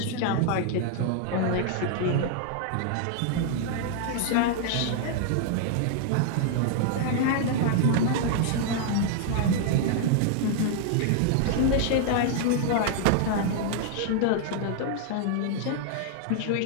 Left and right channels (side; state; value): both; different; correlation 0.00